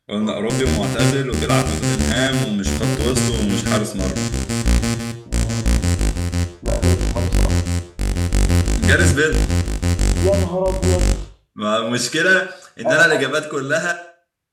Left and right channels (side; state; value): both; identical; correlation 1.00